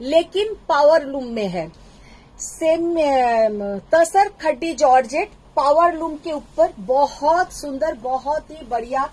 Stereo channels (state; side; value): identical; both; correlation 1.00